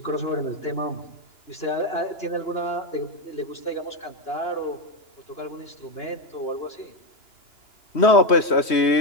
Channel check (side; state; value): right; late; 3.1 ms